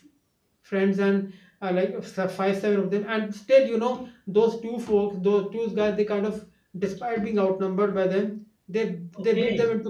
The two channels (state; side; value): identical; both; correlation 1.00